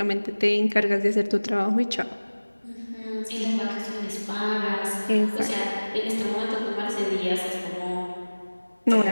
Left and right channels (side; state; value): both; inverted; correlation -1.00